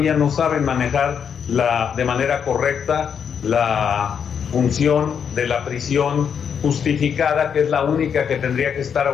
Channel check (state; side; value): quieter; right; 7.4 dB